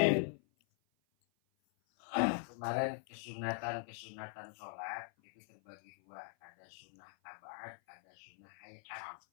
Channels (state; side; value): silent; right; 50 dB below the other